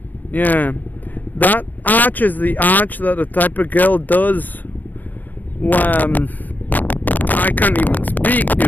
Yeah. That arch is the arch that the type of girl does. I can't even speak,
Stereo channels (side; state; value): right; late; 0.084 ms